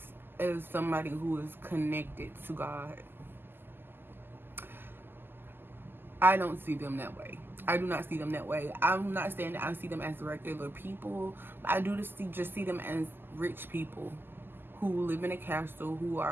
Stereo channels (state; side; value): late; left; 0.098 ms